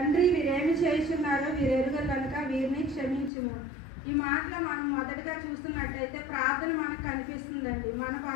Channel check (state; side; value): drops out; right; at 3.3 s